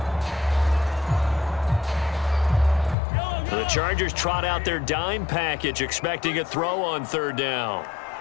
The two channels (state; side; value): drops out; right; at 3.0 s